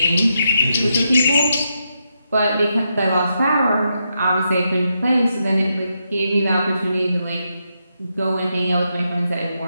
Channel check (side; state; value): both; inverted; correlation -0.83